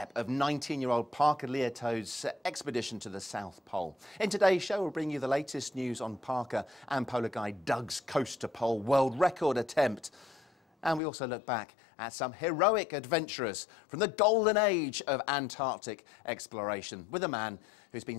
of 19-year-old Parker Liato's expedition to the South Pole. In today's show, we'll bring you the latest news on Parker and polar guide Doug's coast to pole world record attempt. And we also look back at some heroic adventurers from the golden age of Antarctic exploration with a man who's been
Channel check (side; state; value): right; drops out; at 11.0 s